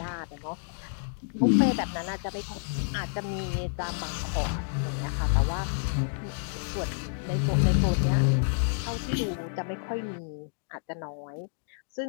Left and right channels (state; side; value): silent; right; digital silence